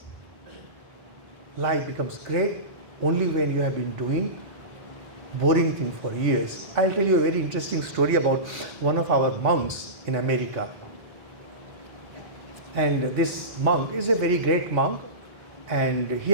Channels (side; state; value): left; late; 2.2 ms